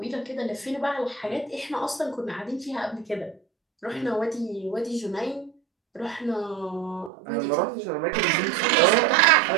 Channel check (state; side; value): drops out; left; at 7.1 s